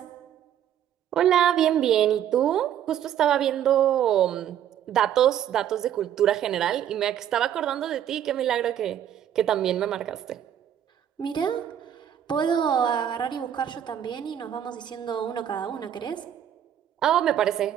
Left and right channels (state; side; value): quieter; left; 10.2 dB